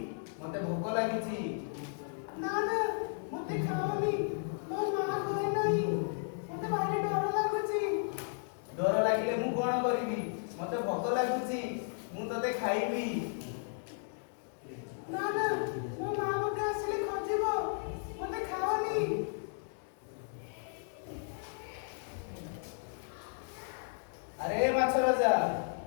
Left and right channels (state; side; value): silent; right; digital silence